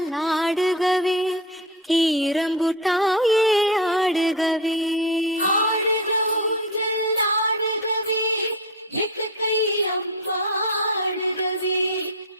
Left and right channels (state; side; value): normal; both; correlation 0.22